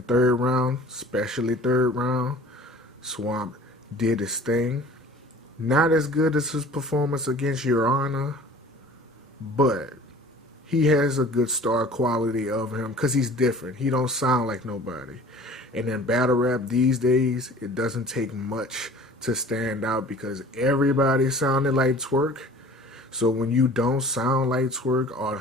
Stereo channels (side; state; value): both; normal; correlation 0.46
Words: third round, especially third round, Swamp did his thing. Not as good as his performance against Your Honor, but he has a good star quality of him because he's different. He don't sound like nobody. And in battle rap these days, it doesn't take much to stand out because everybody sounded like Twerk. So when you don't sound like Twerk or